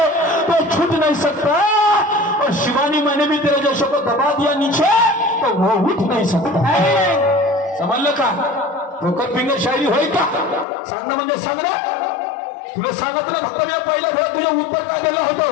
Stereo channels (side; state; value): right; drops out; at 10.7 s